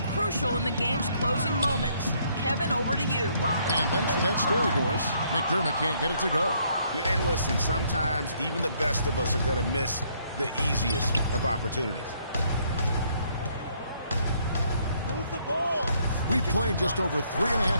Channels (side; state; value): both; inverted; correlation -0.68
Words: crucial in the game's closing moments. Kevin, over to you. And thanks for that story, Doris. McDermott can't get it to go. And listen, sometimes even the best of us are going to miss the easiest of opportunities. Move the ball. We've played just over